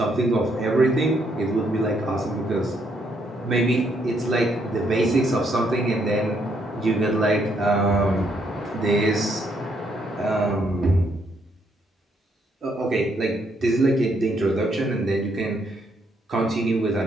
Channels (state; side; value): normal; both; correlation 0.73